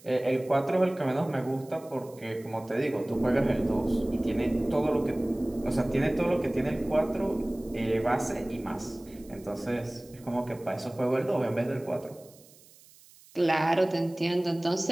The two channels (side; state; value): right; noise; hiss, 25 dB below the sound